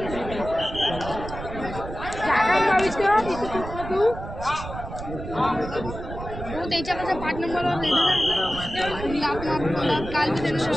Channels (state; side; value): noise; right; rumble, 9 dB below the sound